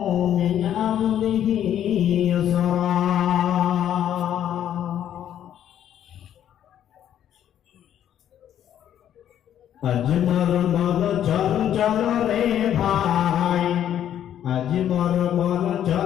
মিন আমরিহি ইউসরা। আজ মোর মন চঞ্চল রে ভাই, আজ মোর মন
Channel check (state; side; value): quieter; right; 10.5 dB